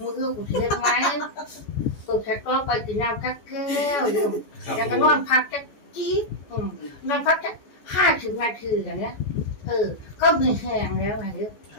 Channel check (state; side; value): late; right; 14 ms